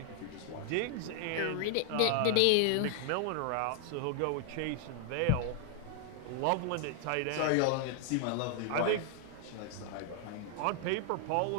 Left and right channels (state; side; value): different; both; correlation 0.00